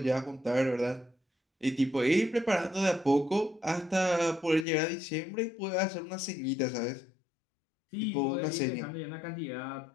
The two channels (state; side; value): drops out; right; at 4.7 s